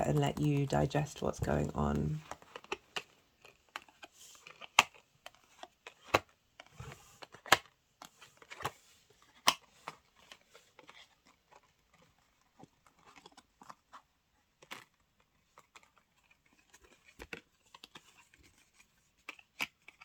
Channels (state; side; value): identical; both; correlation 1.00